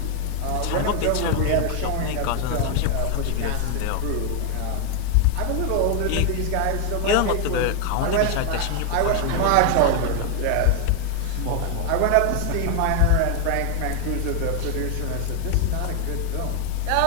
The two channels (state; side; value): different; both; correlation 0.00